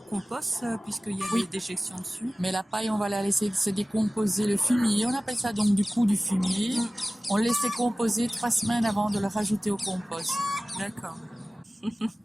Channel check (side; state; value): both; normal; correlation 0.97